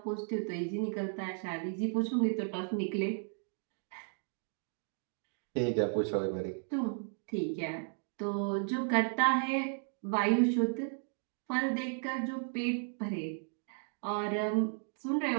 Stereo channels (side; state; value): left; silent; 55 dB below the other